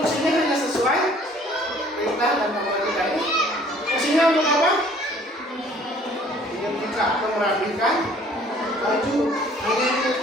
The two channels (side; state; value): both; normal; correlation 0.56